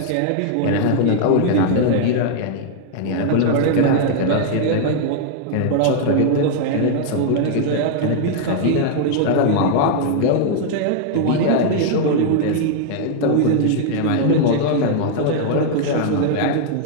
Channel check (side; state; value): both; different; correlation 0.00